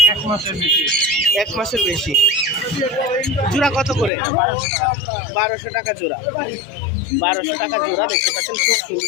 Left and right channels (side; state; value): right; drops out; at 4.1 s